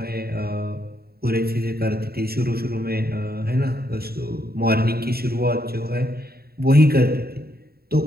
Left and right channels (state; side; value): late; left; 0.45 ms